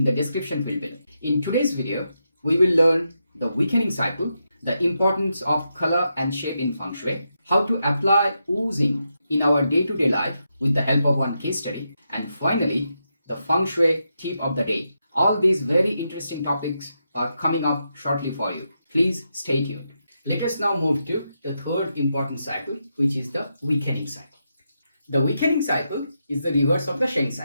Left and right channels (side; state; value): both; inverted; correlation -0.84